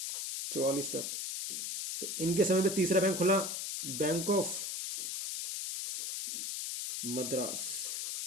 तक। तो इनके समय पे तीसरा बैंक खुला, बैंक ऑफ मद्रास,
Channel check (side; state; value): left; noise; hiss, 3 dB below the sound